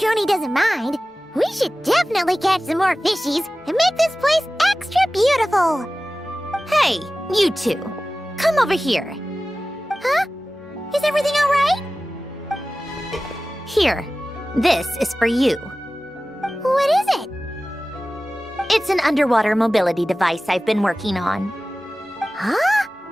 doesn't mind, we should definitely catch some more fishies and make this place extra beautiful. Hey, you two. Come over here. Huh? Is everything all right? Here. This is for you. What is it? It's an underwater mobility device I've been working on. Huh?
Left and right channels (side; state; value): both; normal; correlation 0.96